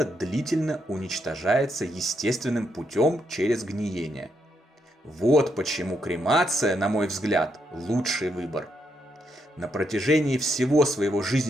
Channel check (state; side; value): normal; both; correlation 0.79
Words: длительно уничтожается естественным путем через гниение. Вот почему кремация, на мой взгляд, лучший выбор. На протяжении всего своего